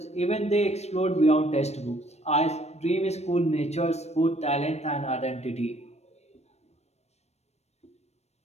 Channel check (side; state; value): right; late; 0.31 ms